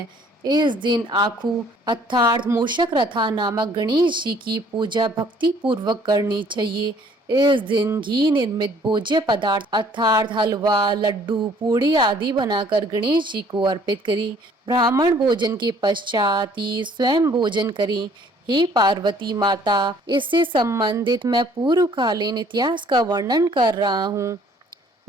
इस दिन आखू अर्थात मूषक रथा नामक गणेश जी की पूजा भक्ति पूर्वक करनी चाहिए। इस दिन घी निर्मित भोज्य पदार्थ अर्थात हलवा, लड्डू, पूड़ी आदि बनाकर गणेश जी को अर्पित करें। ब्राह्मण भोजन के पश्चात ही स्वयं भोजन करें। हे पार्वती माता, इससे संबंधित मैं पूर्वकालीन इतिहास का वर्णन कर रहा हूँ।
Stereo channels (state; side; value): normal; both; correlation 0.58